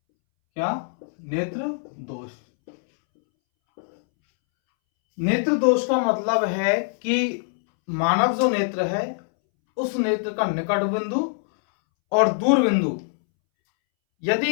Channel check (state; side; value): silent; right; 63 dB below the other